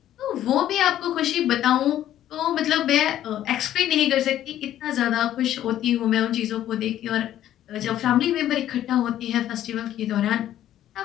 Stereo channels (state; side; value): quieter; right; 12.1 dB